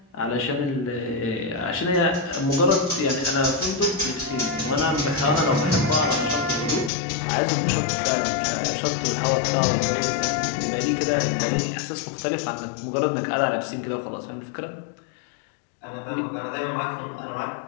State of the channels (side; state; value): right; drops out; at 6.9 s